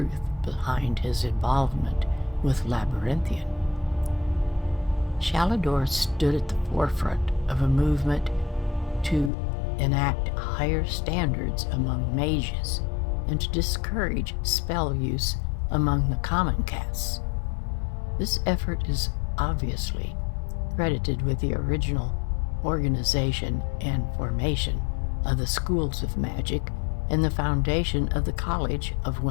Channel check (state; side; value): drops out; right; at 9.3 s